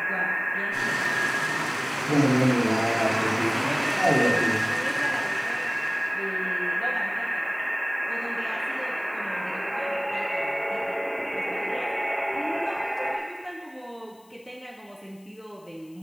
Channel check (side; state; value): left; noise; hiss, 30 dB below the sound